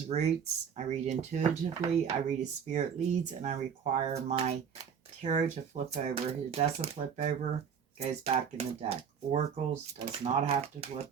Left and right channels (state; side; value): quieter; left; 7.2 dB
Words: Roots. I read intuitively, I read as spirit leads, and I require my tarot to flip over. If it doesn't flip over, it goes back in the deck. Oracles does not have to flip